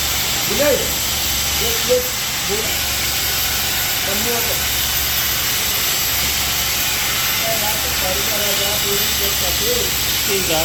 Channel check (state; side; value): identical; both; correlation 1.00